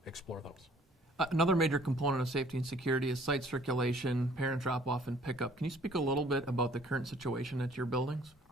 explore those. Another major component of safety and security is site circulation, parent drop-off, and pickup. Can you speak a little bit about the current situation at your buildings?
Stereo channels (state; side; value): normal; both; correlation 0.57